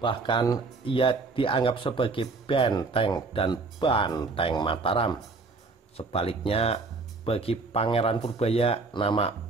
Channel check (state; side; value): quieter; left; 3.9 dB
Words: Bahkan ia dianggap sebagai benteng dan banteng Mataram. Sebaliknya, bagi Pangeran Purbaya, nama